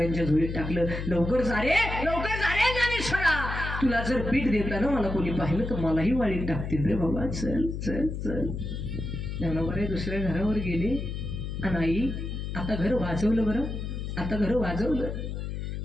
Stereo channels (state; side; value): noise; left; hum, 5 dB below the sound